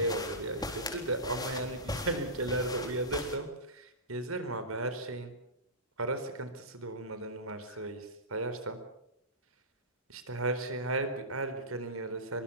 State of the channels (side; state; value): both; normal; correlation -0.19